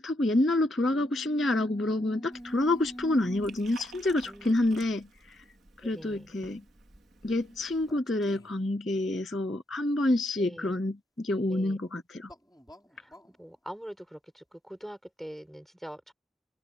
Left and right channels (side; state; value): both; normal; correlation 0.78